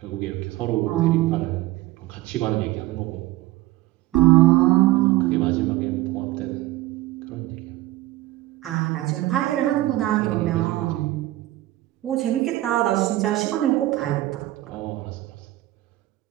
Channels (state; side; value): quieter; left; 17.0 dB